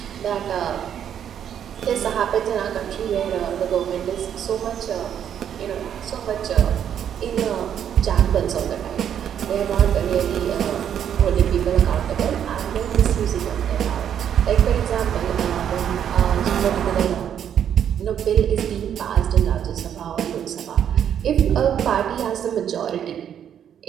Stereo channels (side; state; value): left; quieter; 9.2 dB